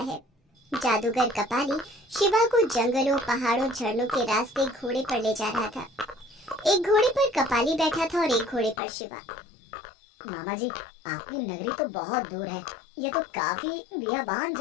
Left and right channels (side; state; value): right; drops out; at 8.8 s